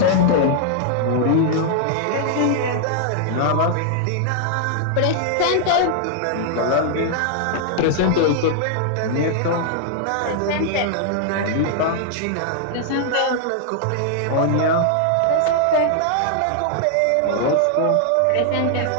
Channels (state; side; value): different; both; correlation -0.01